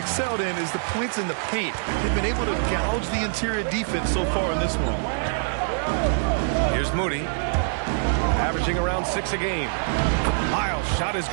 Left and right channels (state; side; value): silent; left; digital silence